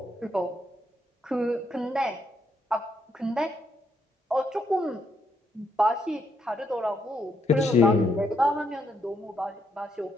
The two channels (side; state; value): both; normal; correlation 0.76